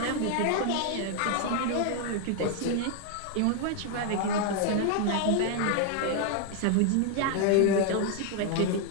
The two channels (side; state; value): both; different; correlation 0.00